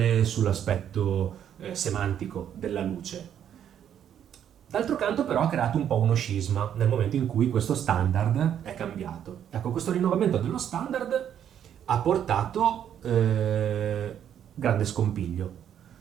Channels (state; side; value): quieter; left; 9.5 dB